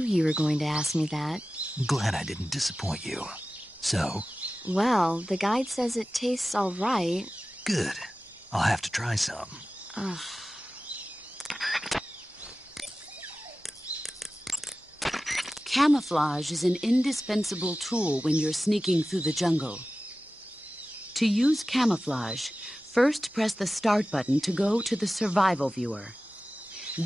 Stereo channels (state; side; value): normal; both; correlation 0.95